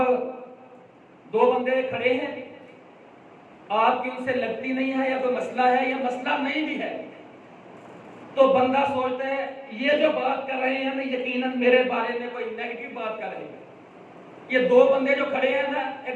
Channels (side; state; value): both; identical; correlation 1.00